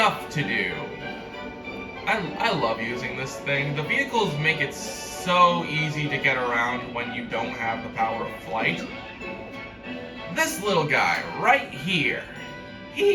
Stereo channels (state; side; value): identical; both; correlation 1.00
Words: to do. I love using this thing. The vehicles make it so easy to get around when you don't have the power of flight. This little guy right here,